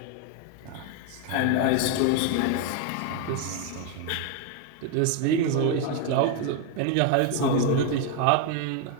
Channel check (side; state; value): both; different; correlation 0.01